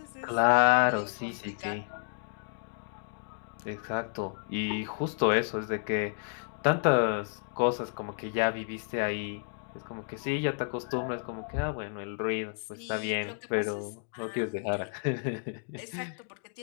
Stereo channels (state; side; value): silent; right; 57 dB below the other